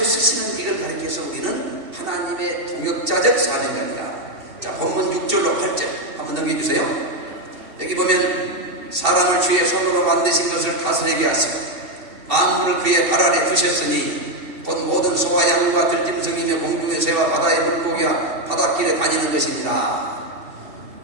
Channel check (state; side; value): late; left; 2.7 ms